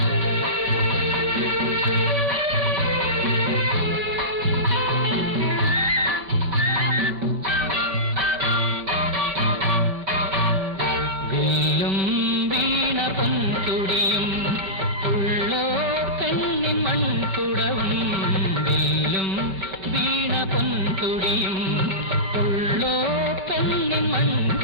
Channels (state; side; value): late; left; 5.1 ms